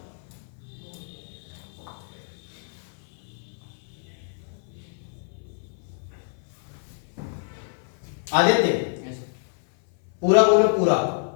Aditya पूरा बोलो, पूरा।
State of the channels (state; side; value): silent; right; 56 dB below the other